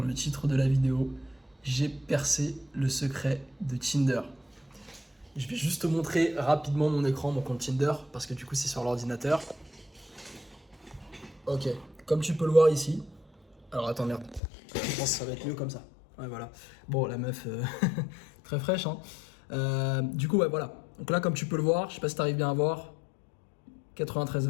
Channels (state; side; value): drops out; right; at 14.4 s